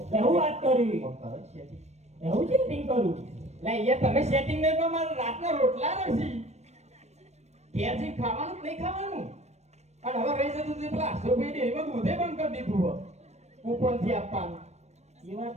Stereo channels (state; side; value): late; left; 0.32 ms